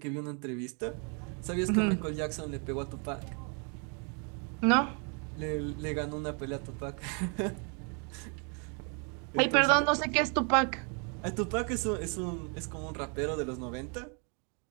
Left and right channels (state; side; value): quieter; left; 37.6 dB